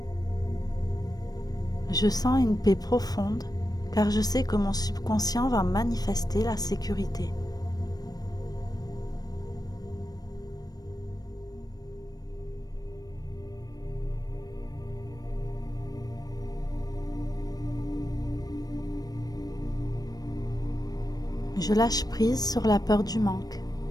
Je sens une paix profonde car je sais que mon subconscient va manifester la sécurité. Je lâche prise sur la peur du manque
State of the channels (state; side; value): late; right; 0.19 ms